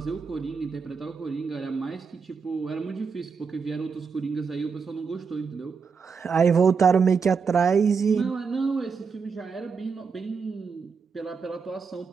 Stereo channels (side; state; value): left; quieter; 5.6 dB